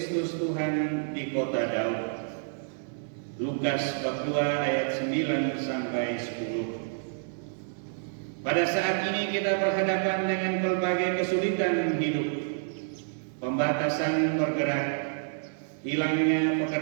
Tuhan di kota Daud." Lukas bab 2 ayat 9 sampai 10. Pada saat ini kita berhadapan dengan berbagai kesulitan hidup, pembatasan bergerak, hilangnya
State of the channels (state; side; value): silent; left; 59 dB below the other